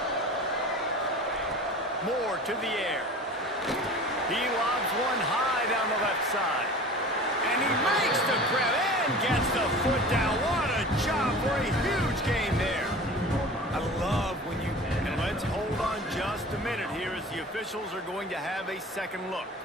Moore to the air. He lobs one high down the left side. And he makes the grab and gets the foot down. What a job for a huge gain there. I love when you... And let's hold on just a minute here as the officials are going to have a second look.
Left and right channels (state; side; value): normal; both; correlation 0.39